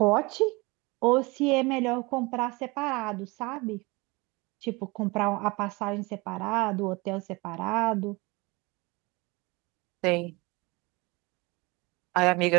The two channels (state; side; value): quieter; left; 25.2 dB